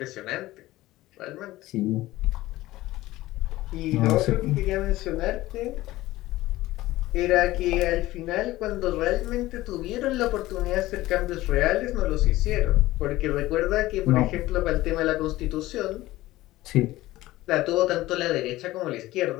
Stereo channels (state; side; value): quieter; right; 17.1 dB